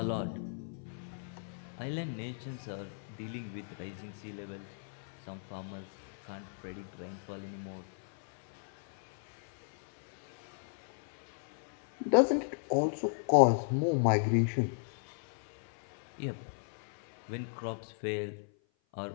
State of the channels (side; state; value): right; silent; 54 dB below the other